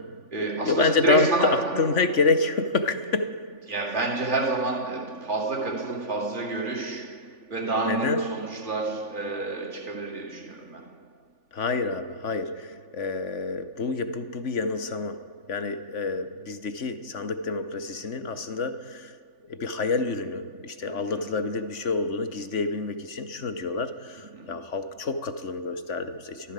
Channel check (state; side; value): late; right; 3.5 ms